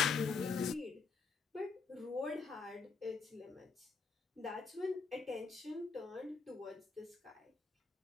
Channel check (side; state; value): right; quieter; 4.8 dB